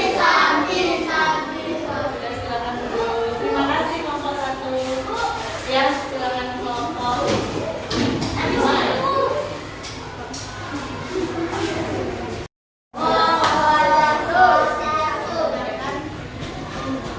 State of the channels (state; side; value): identical; both; correlation 1.00